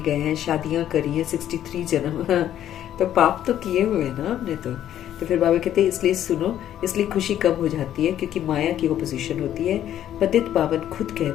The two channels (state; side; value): quieter; right; 11.3 dB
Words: गए हैं, शादियां करी हैं, 63 जन्म तो पाप तो किए हुए हैं ना हमने। तो फिर बाबा कहते हैं इसलिए सुनो, इसलिए खुशी कम हो जाती है, क्योंकि माया की ओपोजिशन होती है। पतित पावन खुद